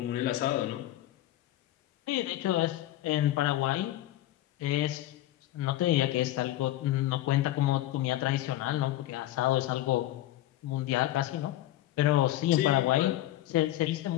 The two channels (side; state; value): right; quieter; 14.4 dB